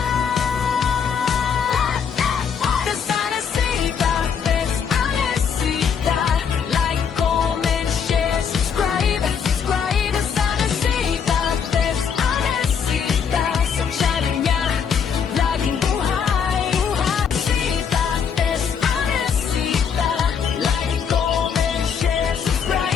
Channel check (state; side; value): quieter; right; 7.0 dB